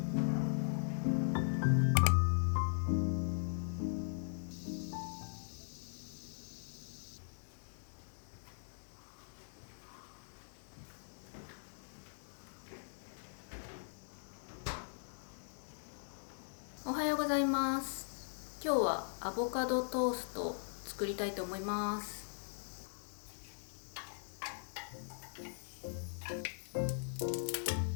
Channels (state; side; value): silent; right; digital silence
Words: おはようございます。今日はアボカドトーストを作りたいと思います。